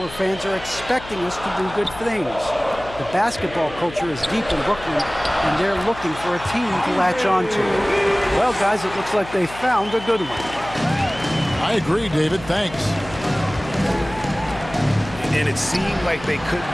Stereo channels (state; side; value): noise; left; hum, 15 dB below the sound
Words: fans are expecting us to do good things. The basketball culture is deep in Brooklyn, and they're looking for a team to latch on to. Well, guys, it looks like they found a good one. I agree, David. Thanks. And it seemed like they couldn't